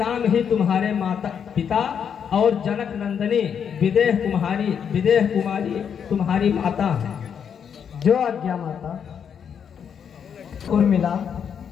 ही तुम्हारे माता पिता और जनक नंदिनी विदेह कुमारी तुम्हारी माता है। जो आज्ञा माता। उर्मिला,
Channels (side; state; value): right; quieter; 7.6 dB